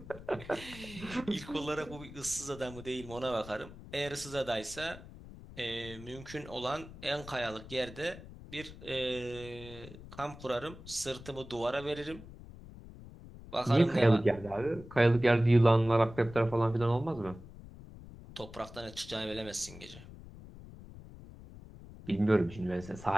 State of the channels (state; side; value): noise; left; rumble, 16 dB below the sound